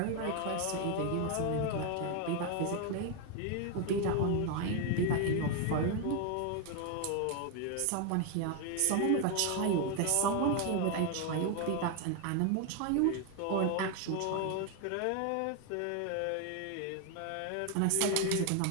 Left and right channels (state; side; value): different; both; correlation 0.01